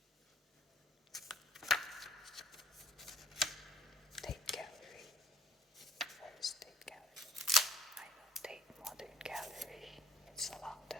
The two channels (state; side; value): normal; both; correlation 0.56